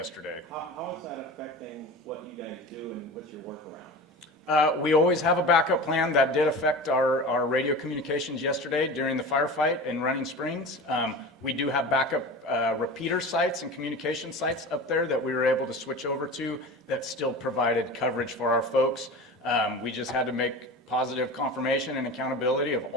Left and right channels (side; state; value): both; normal; correlation 0.33